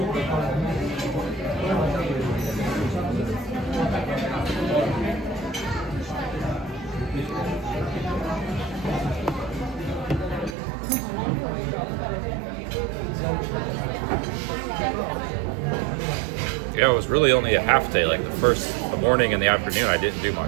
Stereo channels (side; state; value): left; drops out; at 10.6 s